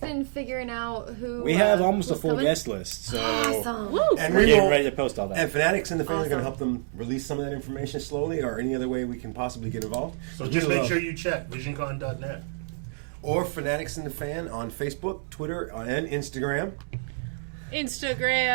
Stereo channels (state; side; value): silent; left; digital silence